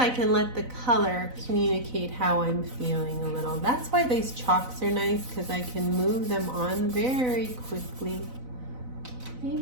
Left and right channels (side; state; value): left; late; 4.0 ms